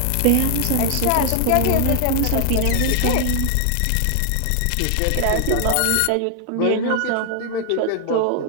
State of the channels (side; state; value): both; different; correlation 0.00